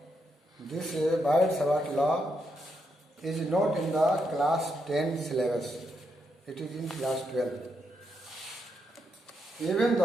this Biot-Savart law is not in the class 10 syllabus, it is in class 12. Even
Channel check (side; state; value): both; normal; correlation 0.80